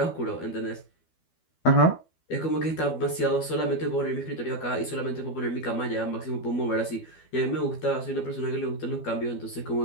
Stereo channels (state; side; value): late; right; 12 ms